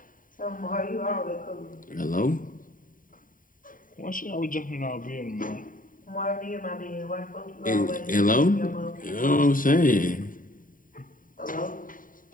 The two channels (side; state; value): right; late; 0.39 ms